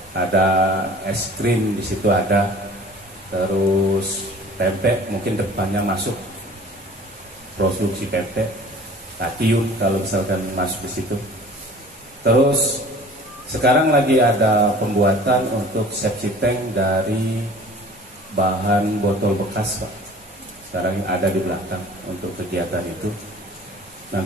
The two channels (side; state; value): both; normal; correlation 0.46